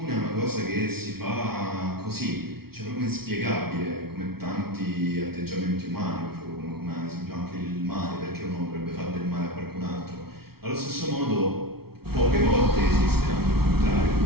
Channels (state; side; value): late; left; 0.95 ms